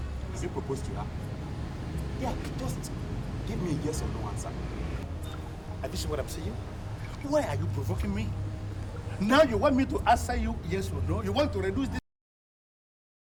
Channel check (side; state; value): both; identical; correlation 1.00